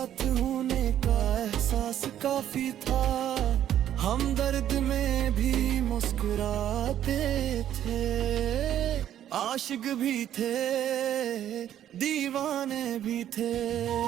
होने का एहसास काफी था। हम दर्द में भी मुस्कुराते थे, आशिक भी थे, दीवाने भी थे।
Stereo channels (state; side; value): quieter; left; 11.1 dB